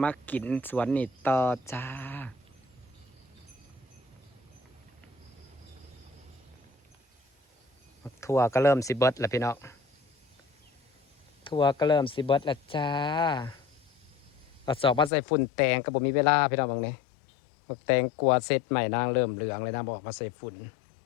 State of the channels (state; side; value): drops out; right; at 15.1 s